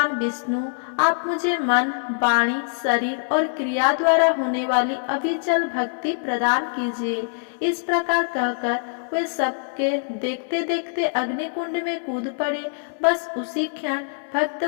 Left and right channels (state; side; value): silent; right; digital silence